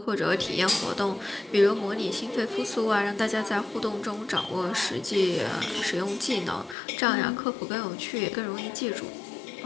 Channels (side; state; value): right; drops out; at 6.8 s